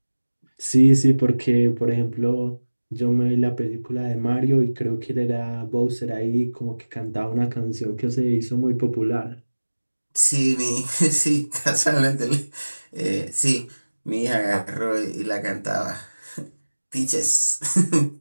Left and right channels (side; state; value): both; inverted; correlation -1.00